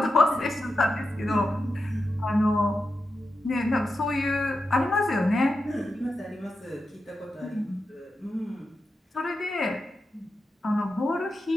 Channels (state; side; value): normal; both; correlation 0.89